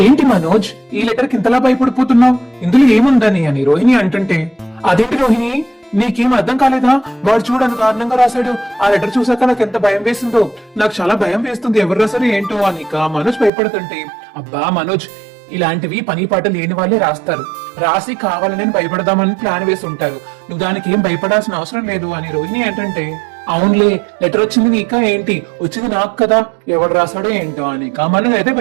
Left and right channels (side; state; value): left; drops out; at 13.5 s